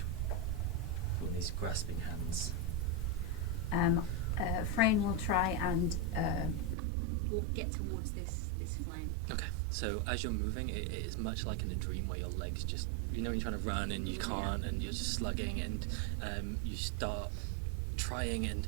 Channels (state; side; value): drops out; left; at 6.8 s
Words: with these grasping hands. Frayne will try and get towards this flame. Okay, so as you're moving, it is much like in a dream where your legs just, you're trying to run and you can't, and you're just slugging, and you start trying, and